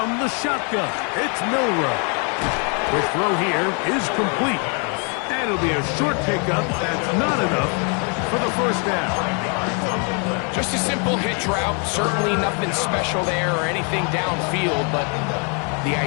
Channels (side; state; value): right; quieter; 37.5 dB